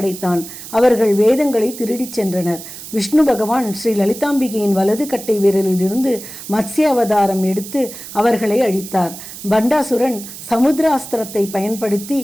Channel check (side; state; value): right; noise; hiss, 13 dB below the sound